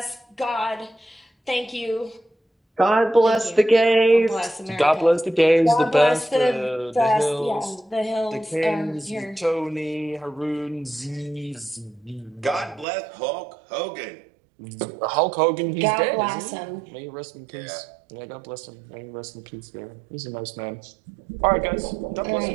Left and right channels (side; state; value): left; drops out; at 12.9 s